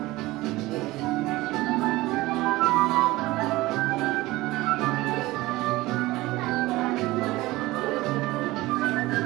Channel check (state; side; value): quieter; left; 19.1 dB